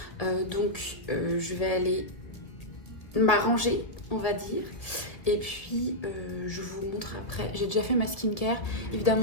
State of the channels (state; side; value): late; right; 1.9 ms